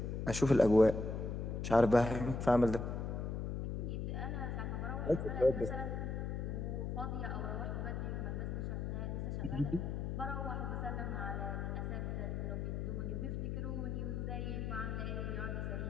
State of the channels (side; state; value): left; noise; hum, 2 dB below the sound